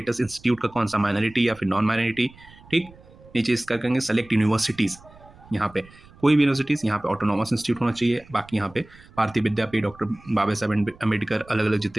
इंस्टीट्यूट का कौन सा, माइनॉरिटी या फिर नॉन माइनॉरिटी। ठीक, नीचे इसका करेंगे सेलेक्ट यूनिवर्सिटीज़, यहाँ पे कोई भी यूनिवर्सिटीज़ यहाँ पे ऑटोनॉमस इंस्टीट्यूट होना चाहिए। बाकी यहाँ पे भारतीय विद्यापीठ, डॉक्टर बाबा साहेब अम्बेडकर, अलग-अलग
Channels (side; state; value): right; noise; rumble, 24 dB below the sound